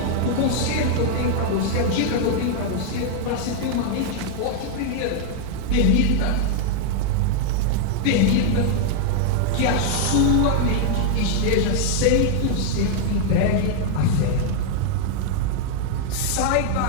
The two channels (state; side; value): different; both; correlation 0.00